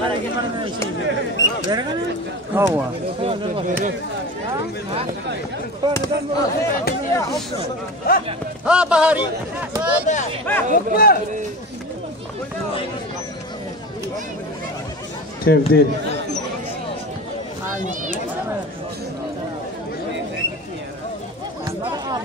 ها بهاري تبديل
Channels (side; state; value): both; normal; correlation 0.30